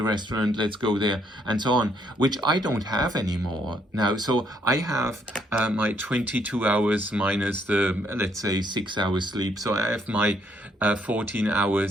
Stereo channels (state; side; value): normal; both; correlation 0.70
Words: restaurant, let's go there, and so on, which I don't have anymore now. So I have my 22 hours minus the, let's say, 6 hours sleep. So I have my 14